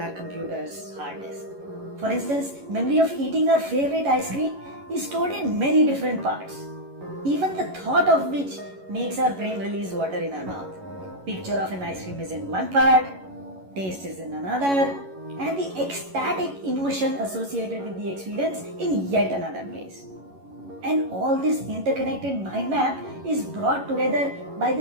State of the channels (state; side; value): late; left; 11 ms